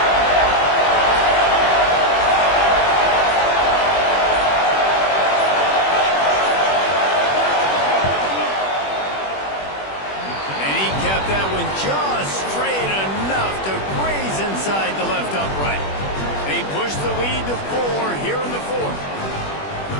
That one just straight enough to graze inside the left upright. They push the lead to 4 here in the 4th.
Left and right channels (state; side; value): late; right; 21 ms